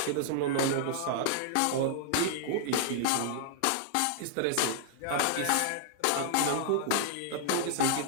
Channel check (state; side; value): different; both; correlation -0.01